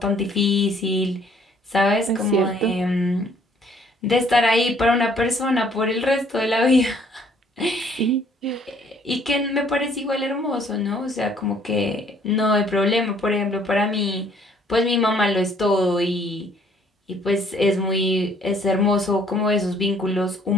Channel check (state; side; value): normal; both; correlation 0.61